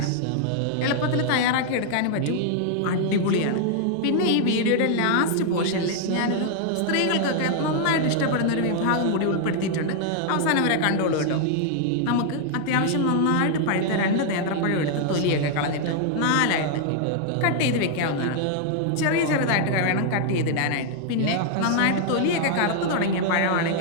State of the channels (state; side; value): different; both; correlation 0.00